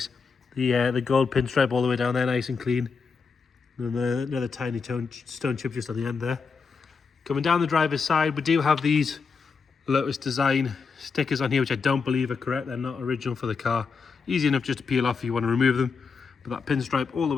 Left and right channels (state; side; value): quieter; right; 5.2 dB